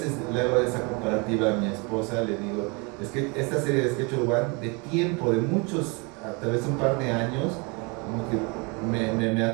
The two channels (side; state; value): left; quieter; 30.6 dB